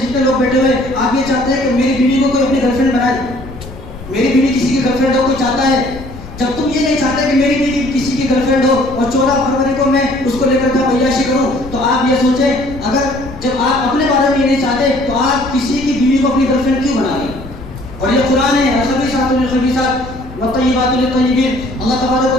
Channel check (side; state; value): left; noise; rumble, 14 dB below the sound